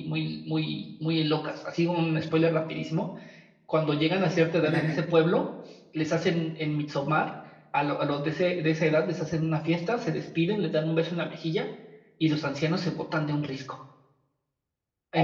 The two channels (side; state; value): both; identical; correlation 1.00